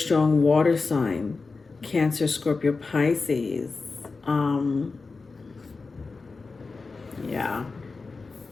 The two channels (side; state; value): right; quieter; 4.1 dB